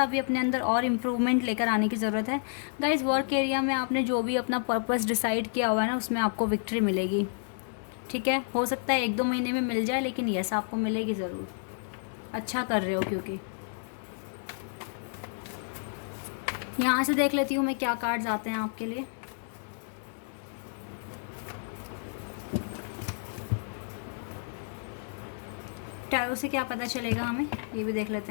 भी अपने अंदर और इम्प्रूवमेंट लेकर आने की ज़रूरत है गाइस। वर्क एरिया में आपने जो भी अपना पर्पस डिसाइड किया हुआ है ना, उसमें आपको विक्ट्री मिलेगी, ठीक है। हो सकता है 1-2 महीने में मिल जाए, लेकिन यस, आपको मिलेगी ज़रूर। अच्छा कर रहे हो, क्योंकि यहाँ से देख लेती हूँ मैं क्या कार्ड्स आते हैं आपके लिए। टैरो से क्या पता चलेगा हमें, ये भी देख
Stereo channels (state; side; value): silent; right; digital silence